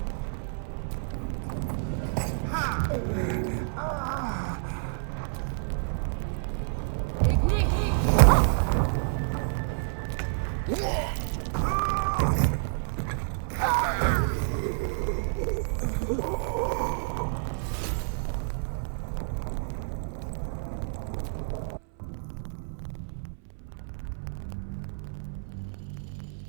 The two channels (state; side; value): silent; left; 59 dB below the other